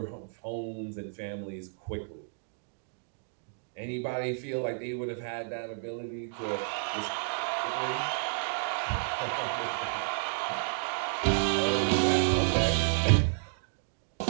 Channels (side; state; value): left; silent; digital silence